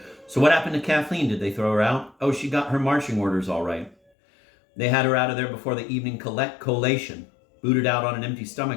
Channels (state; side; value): drops out; right; at 4.0 s